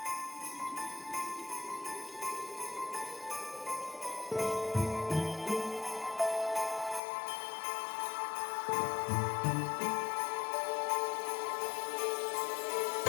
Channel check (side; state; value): right; drops out; at 7.0 s